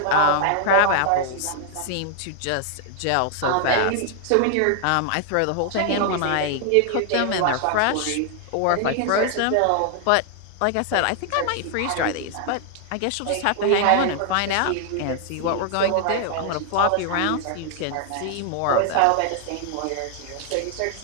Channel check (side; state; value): both; different; correlation 0.00